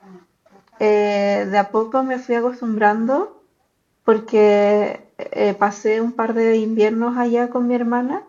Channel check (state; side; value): identical; both; correlation 1.00